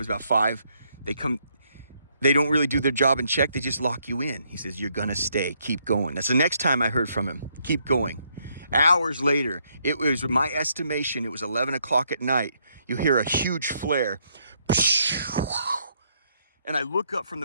about 5. They come. they don't really do their job and check. They just lock you in. He says, you're going to stay. Keep going. That's the next time I heard from him. Keep going. Hours later, it was my estimation, it was 11 o'clock at night. You hear a huge flare. And I look up from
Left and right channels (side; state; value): both; inverted; correlation -0.73